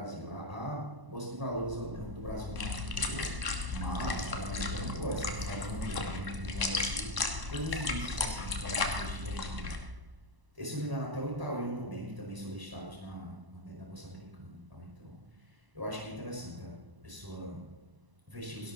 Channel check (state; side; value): late; left; 1.0 ms